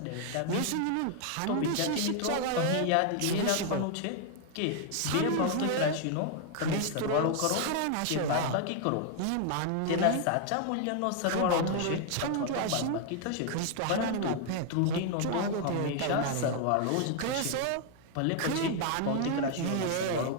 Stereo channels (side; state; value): both; different; correlation 0.00